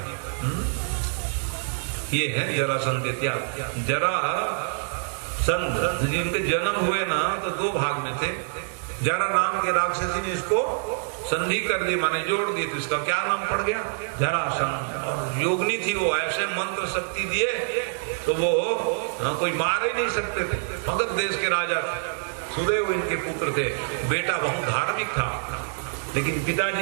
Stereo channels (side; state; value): left; silent; digital silence